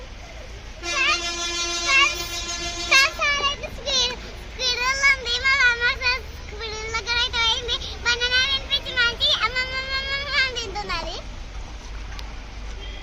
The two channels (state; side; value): identical; both; correlation 1.00